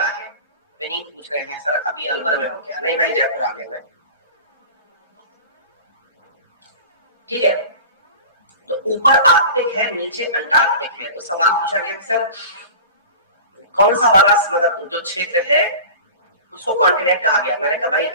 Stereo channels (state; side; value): inverted; both; correlation -0.36